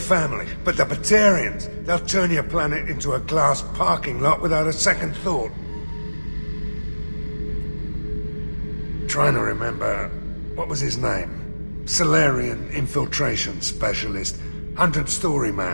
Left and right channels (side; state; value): both; inverted; correlation -1.00